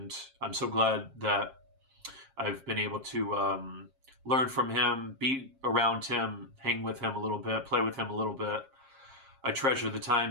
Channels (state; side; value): late; left; 7.5 ms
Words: I'm so glad that I've been able to learn from him, be around him, hang with him a little bit, play with him a little bit. I treasure the